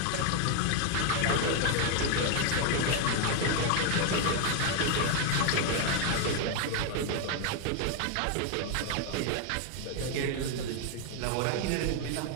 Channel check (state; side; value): different; both; correlation 0.00